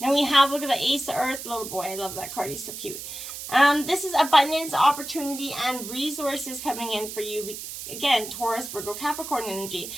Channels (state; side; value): noise; right; hiss, 9 dB below the sound